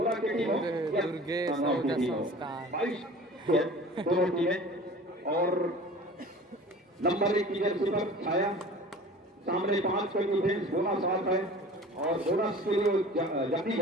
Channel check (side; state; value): both; normal; correlation 0.42